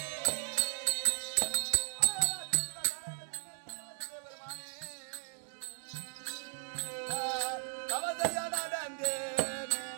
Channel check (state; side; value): silent; left; 53 dB below the other